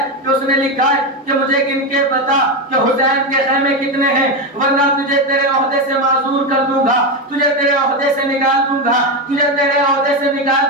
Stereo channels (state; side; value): normal; both; correlation 0.12